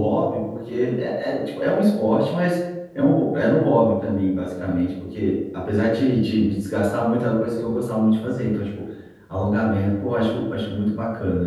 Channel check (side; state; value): both; identical; correlation 1.00